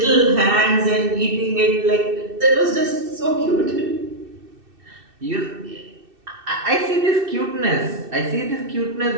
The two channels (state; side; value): late; left; 2.6 ms